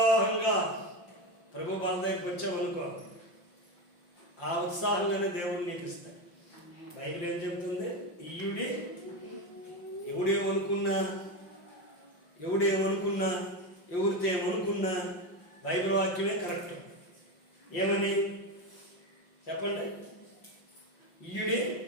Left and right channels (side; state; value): right; late; 5.7 ms